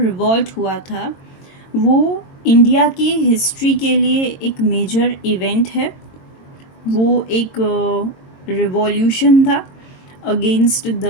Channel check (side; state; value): right; late; 22 ms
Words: रिवॉल्ट हुआ था वो इंडिया की हिस्ट्री के लिए एक मेजर इवेंट है। वो एक रिवॉल्यूशन था अगेंस्ट द